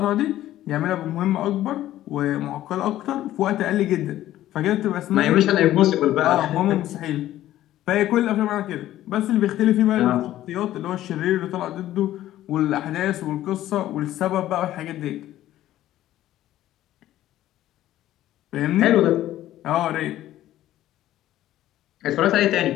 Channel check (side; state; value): right; quieter; 13.7 dB